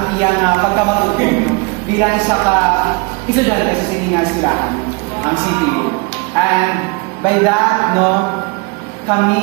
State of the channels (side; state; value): left; quieter; 28.2 dB